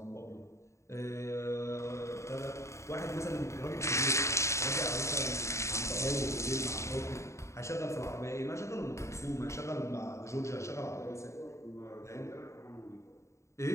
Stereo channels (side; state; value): right; late; 0.14 ms